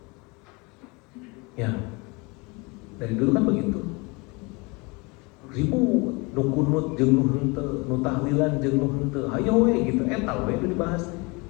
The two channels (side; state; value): right; quieter; 27.6 dB